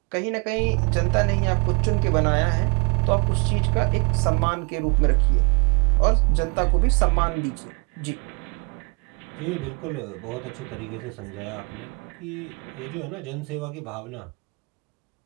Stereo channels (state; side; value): quieter; left; 31.5 dB